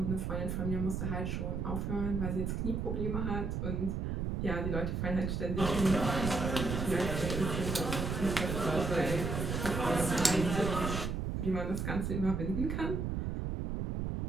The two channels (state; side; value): noise; right; rumble, 1 dB below the sound